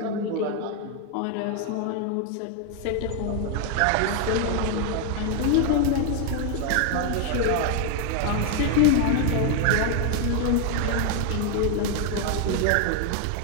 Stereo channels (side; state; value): both; different; correlation 0.01